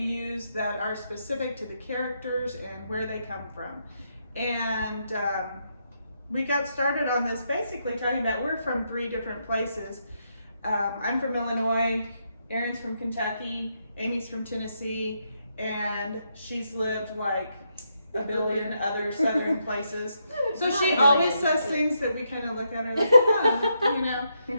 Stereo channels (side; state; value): both; inverted; correlation -0.80